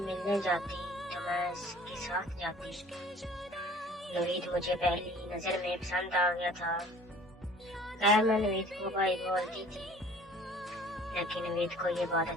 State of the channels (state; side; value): normal; both; correlation 0.50